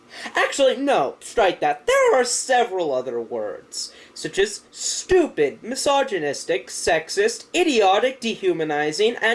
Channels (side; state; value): both; identical; correlation 1.00